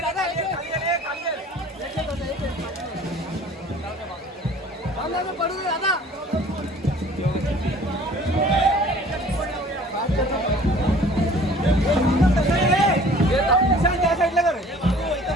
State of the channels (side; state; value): both; normal; correlation 0.50